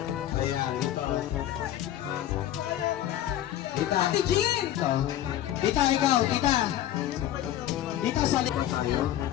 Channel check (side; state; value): right; quieter; 12.4 dB